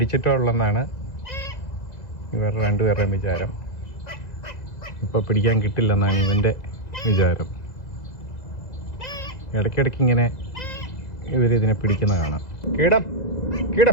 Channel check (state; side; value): late; right; 2.0 ms